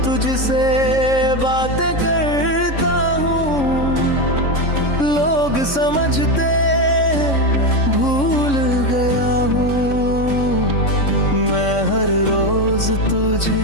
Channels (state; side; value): late; right; 3.6 ms